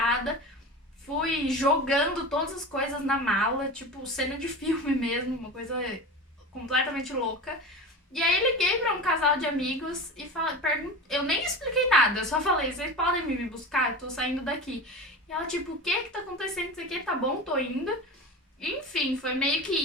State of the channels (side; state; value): both; normal; correlation 0.29